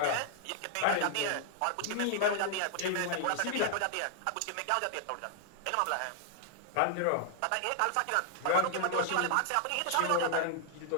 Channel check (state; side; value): different; both; correlation 0.00